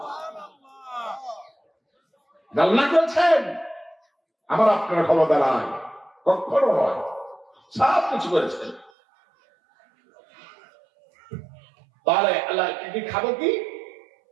আল্লাহ করেছেন, আমার আপনার ক্ষমতা নাই, কখনো নয়, সব কিছু করেছেন। তাহলে আল্লাহ কি খাবো কি?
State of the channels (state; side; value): drops out; left; at 8.9 s